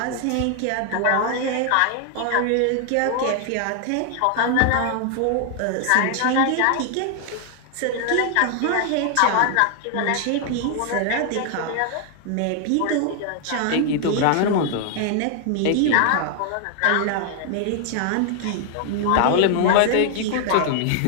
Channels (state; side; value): different; both; correlation 0.00